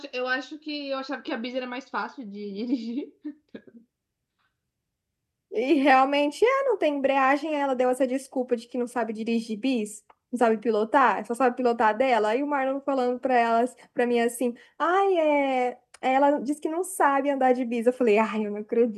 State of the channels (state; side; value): identical; both; correlation 1.00